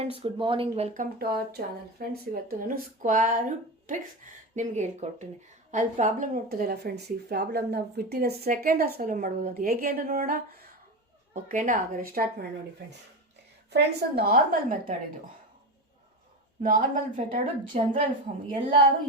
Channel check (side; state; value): both; normal; correlation 0.21